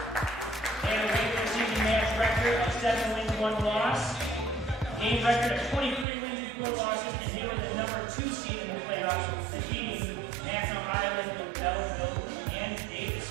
They have a regular season match record of 7 wins, 1 loss. Game record of 23 wins and 4 losses, and they were the number 2 seed in the playoffs, defeating National Island, Belleville, and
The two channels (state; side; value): drops out; left; at 6.1 s